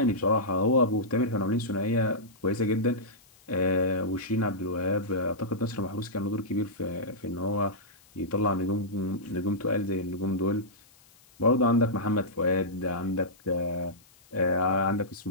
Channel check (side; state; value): left; noise; hiss, 28 dB below the sound